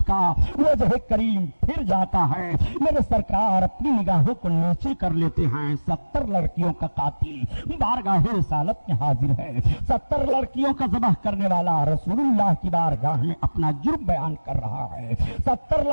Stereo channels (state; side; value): inverted; both; correlation -1.00